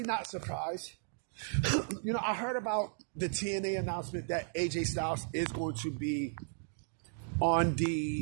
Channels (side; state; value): left; silent; digital silence